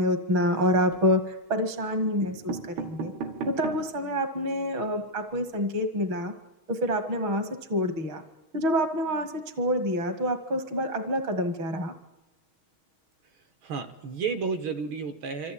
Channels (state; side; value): late; left; 6.3 ms